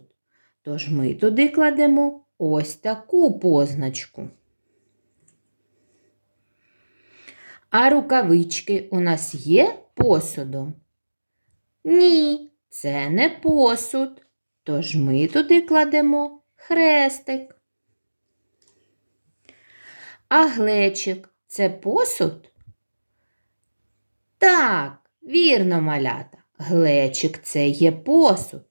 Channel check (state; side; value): inverted; both; correlation -1.00